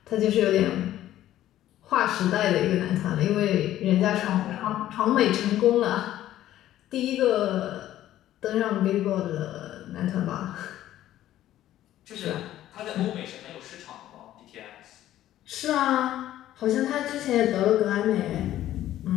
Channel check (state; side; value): quieter; right; 13.2 dB